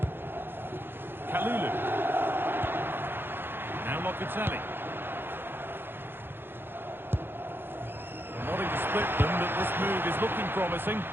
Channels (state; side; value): late; left; 0.10 ms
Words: Kalulu. Now Locatelli. They're wanting to split them, but this move is looking promising.